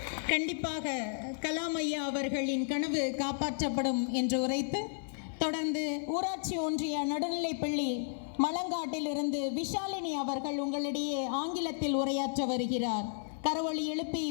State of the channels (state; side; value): silent; right; 56 dB below the other